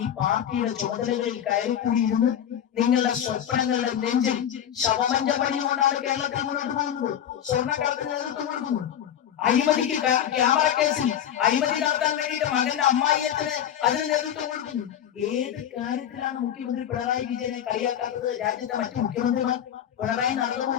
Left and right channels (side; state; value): right; quieter; 9.9 dB